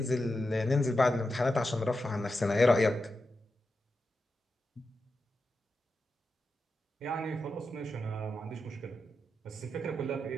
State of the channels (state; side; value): normal; both; correlation 0.89